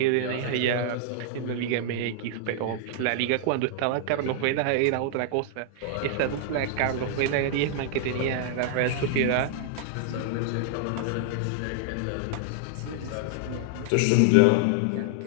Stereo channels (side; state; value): both; different; correlation 0.00